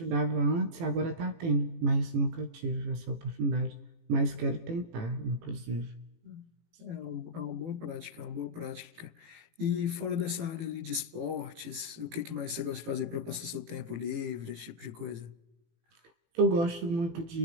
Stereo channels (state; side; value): late; left; 18 ms